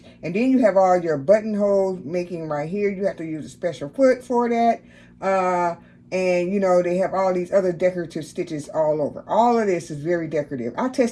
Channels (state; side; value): identical; both; correlation 1.00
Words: And then you have all your buttonhole making right here. You have to use a special foot for that. And, you know, they have all these other decorative stitches all over. All of this is very decorative. I